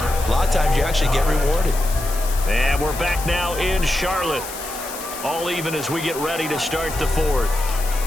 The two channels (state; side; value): noise; left; hiss, 11 dB below the sound